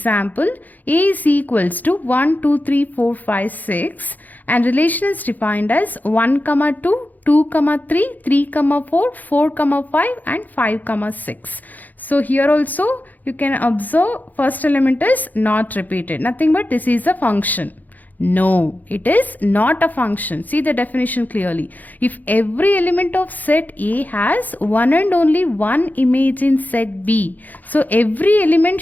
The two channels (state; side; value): late; right; 0.082 ms